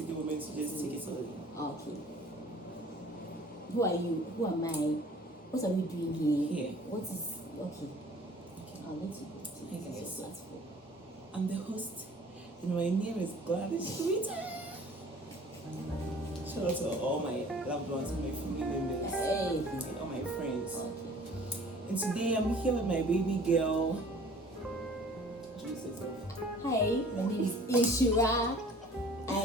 a moment to just take it slowly. Okay. Who are you? Who am I? What are we doing here? What is okay? I'll let you go to your platform. I'm the host, and my name is Gladys Twitter. Shout out to all my loved ones and my family members and all my friends. Okay. And today I'm here with my baby girl. Introduce yourself. Hi, my name is Ishira. I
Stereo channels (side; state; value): both; normal; correlation 0.50